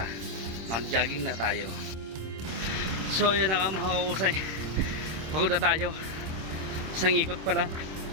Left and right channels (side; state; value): left; late; 26 ms